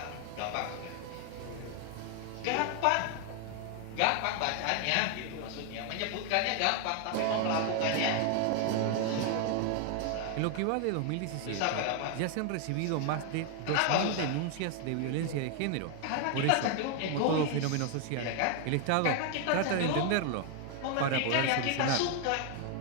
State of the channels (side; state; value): both; different; correlation 0.01